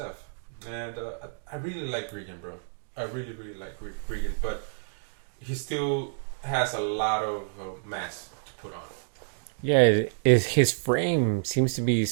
and I really like Regan, bro. I really, really like Regan, but he still has a lot of mass to put on. Yeah, his frame seems to be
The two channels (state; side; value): silent; left; digital silence